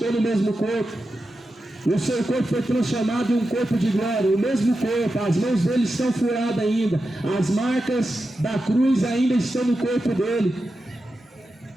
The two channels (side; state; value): both; normal; correlation 0.90